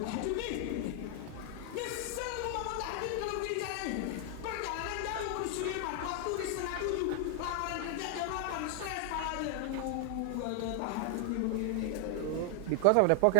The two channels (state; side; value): different; both; correlation 0.00